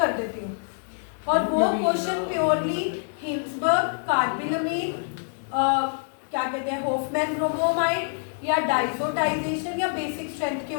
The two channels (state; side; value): silent; right; 61 dB below the other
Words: देती हूँ और वो क्वेश्चन प्योरली हिंसबर्ग, कार्बिलमीन, क्या कहते हैं, हॉफमैन ब्रोमोमाइड या डाइजोटाइजेशन या बेसिक स्ट्रेंथ के